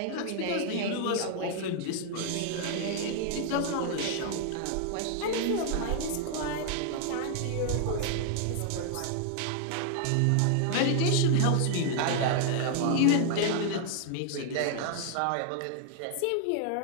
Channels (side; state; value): both; different; correlation 0.00